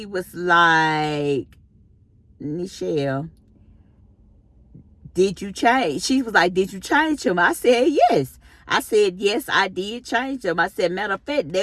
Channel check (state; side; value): identical; both; correlation 1.00